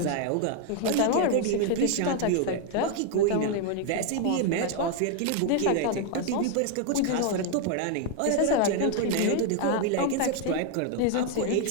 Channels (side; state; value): both; different; correlation 0.00